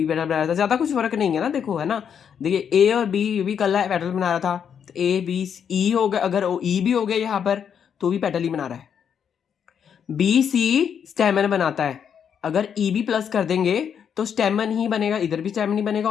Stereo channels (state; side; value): quieter; right; 7.9 dB